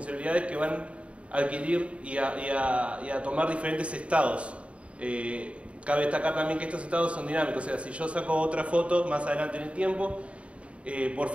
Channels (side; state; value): left; late; 0.062 ms